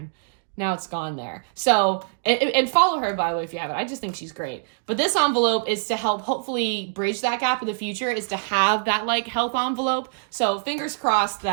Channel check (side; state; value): left; silent; digital silence